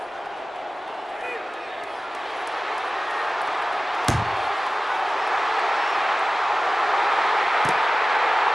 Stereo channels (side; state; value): both; normal; correlation 0.97